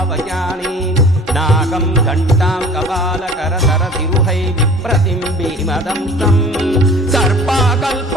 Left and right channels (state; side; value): normal; both; correlation 0.46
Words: नागं घण्टां कपालकरधरतिरुहै विप्रतिम्बिमदंसं